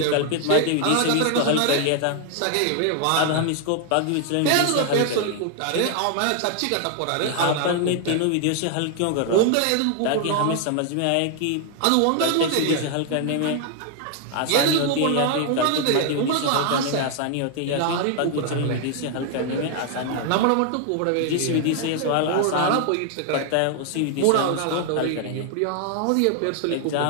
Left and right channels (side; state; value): both; different; correlation 0.00